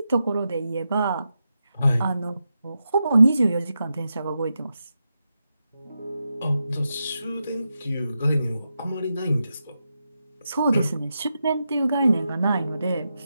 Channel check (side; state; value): both; inverted; correlation -0.88